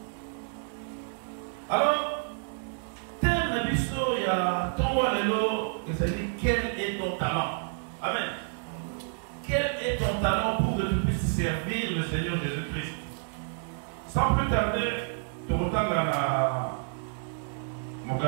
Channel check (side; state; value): left; silent; 58 dB below the other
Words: Alors, thème Nabiso, il y a 3 mois de l'eau, il s'est dit, quel est ton talent? Amen. Quel est ton talent pour que tu puisses servir le Seigneur Jésus-Christ? Sans plus tarder,